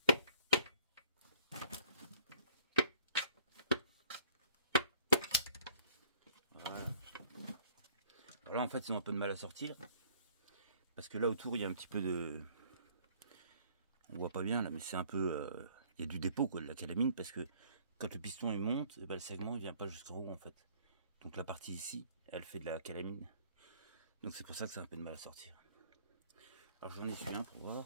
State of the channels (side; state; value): both; inverted; correlation -0.57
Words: Voilà. Alors là, en fait, ils ont un peu de mal à sortir. Parce que là, autour, il y a un petit peu de... On voit pas bien, là, mais c'est un peu... Il y a du dépôt, quoi, de la calamine, parce que quand le piston, il monte, et ben, le segment, il vient pas jusqu'en haut, en fait. Donc la partie ici, elle fait de la calamine. Donc c'est pour ça que ça a un peu de mal à sortir. Alors j'en ai su un pour voir.